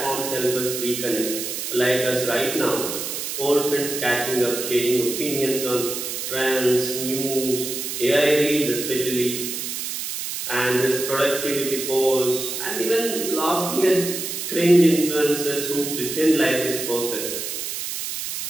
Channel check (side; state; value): right; noise; hiss, 5 dB below the sound